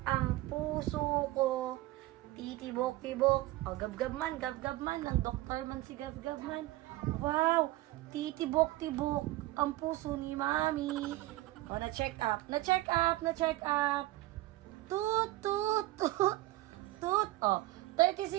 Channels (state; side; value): quieter; left; 17.6 dB